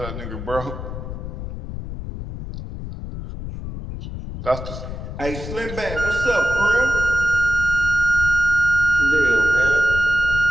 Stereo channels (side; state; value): left; noise; rumble, 8 dB below the sound